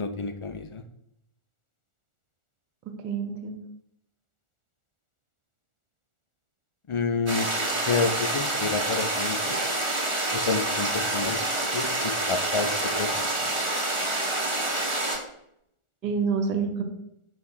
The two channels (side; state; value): right; late; 1.4 ms